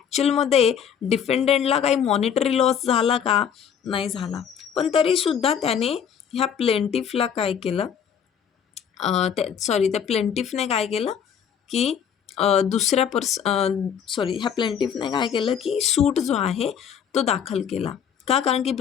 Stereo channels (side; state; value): right; quieter; 8.0 dB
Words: डिफेंडंटला काही मॉनिटरी लॉस झाला का? नाही झाला. पण तरीसुद्धा त्याने ह्या प्लेंटिफला काय केलं, त्या प्लेंटिफने काय केलं की ह्या प्लेंटिफने काय केलं की सूट जो आहे तो दाखल केला. का? कारण की